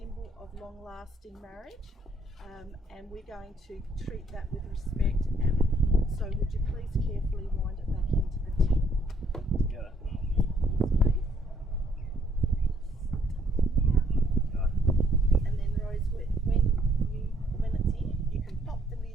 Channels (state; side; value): normal; both; correlation 0.67